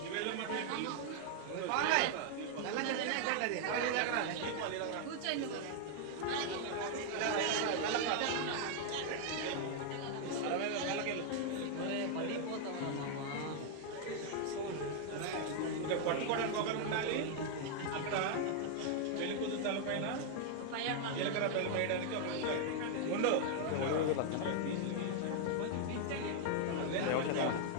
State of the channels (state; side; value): different; both; correlation 0.00